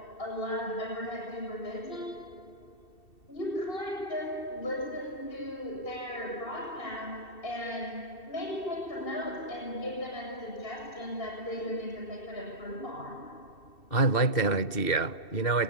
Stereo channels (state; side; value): late; right; 2.7 ms